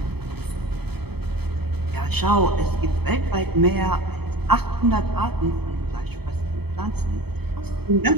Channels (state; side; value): late; left; 0.97 ms